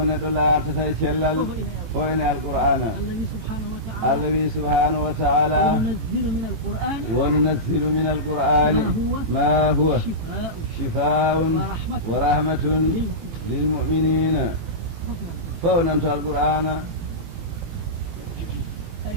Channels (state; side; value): late; left; 18 ms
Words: neɗɗo laartata e cellal fo ene alqur'ana allah wi subhanahu wa taala وننزل من القرآن ما هو شفاء ورحمة للمؤمنين فونمت القرآن